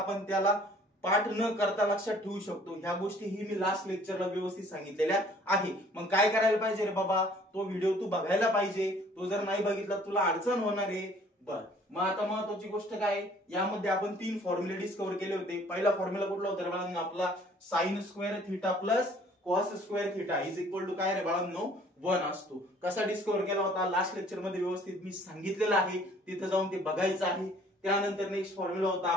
त्याला पाठ न करता लक्षात ठेवू शकतो, ह्या गोष्टी ही मी लास्ट लेक्चरला व्यवस्थित सांगितलेल्या आहे। मग काय करायला पाहिजे रे बाबा, तो व्हिडिओ तू बघायला पाहिजे। तो जर नाही बघितला तुला अडचण होणार आहे। बर, मग आता महत्वाची गोष्ट काय, यामध्ये आपण 3 फॉर्म्युले डिस्कवर केले होते। पहिला फॉर्म्युला कुठला होता रे बाळांनो, आपला sine square theta plus cos square theta is equal to काय रे बाळांनो, 1 असतो। कसा डिस्कवर केला होता लास्ट लेक्चर मध्ये व्यवस्थित मी सांगितलेलं आहे, तिथे जाऊन ते बघायचं आहे। त्यानंतर नेक्स्ट फॉर्म्युला होता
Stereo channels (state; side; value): normal; both; correlation 0.56